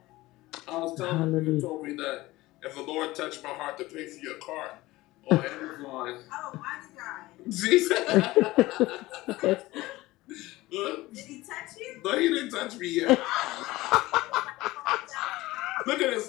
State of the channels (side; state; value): right; quieter; 18.8 dB